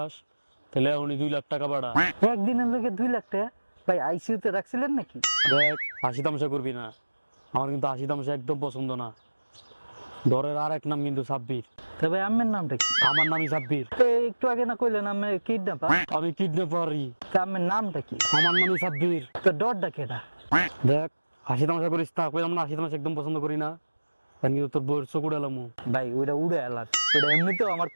তাহলে এখনই 2 লাখ টাকা বাড়া। একদিনের লোকে 2 লাখ টাকা? ভাই আইসিইউতে রাখছিলেন নাকি? দেখ, হাসি তামাশা করবি না। আমার কিন্তু হাসি তামাশা একদম পছন্দ না। ডরের আর এক নাম কিন্তু সাব্বির। তবে আম্মের নামটা কি? আমার নামই সাব্বির। একটু আগে না কইলেন আমি কিডন্যাপার? আমি কিডন্যাপারই। তা আম্মের নামটা কি? আমার নামই সাব্বির। তো ডরটা কেটা? দেখ, হাসি তামাশা করিস না। কইলাম না হাসি তামাশা একদম পছন্দ করি না। কারণ কিন্তু তোর বউয়ের চোখ উড়ালামু। ভাই ওইটা উড়ে এলাক, ওইটা এমনিতেও আমার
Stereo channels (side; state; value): both; inverted; correlation -1.00